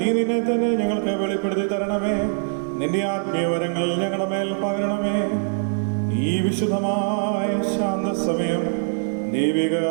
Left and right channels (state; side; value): silent; left; 64 dB below the other